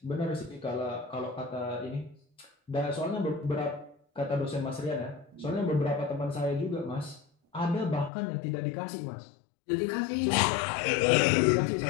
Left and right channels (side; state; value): right; drops out; at 8.1 s